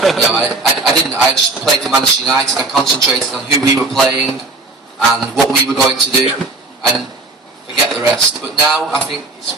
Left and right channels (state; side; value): quieter; left; 3.3 dB